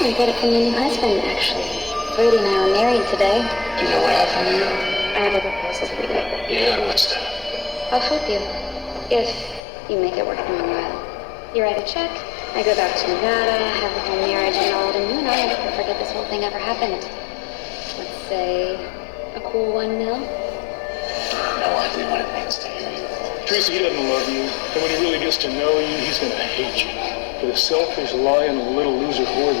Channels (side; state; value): right; drops out; at 9.6 s